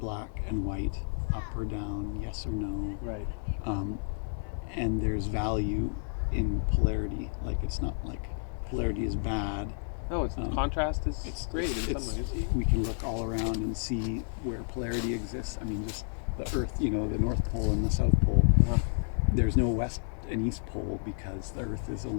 black and white, up or down, yes or no. Right. And there's value in polarity. Like it's not like polarity is bad. No, contrast is great in some ways. We can look all around and see where polarity exists. I mean, just the Earth, the North Pole and the South Pole. There's no West and East Pole because the Earth is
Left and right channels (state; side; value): silent; right; 57 dB below the other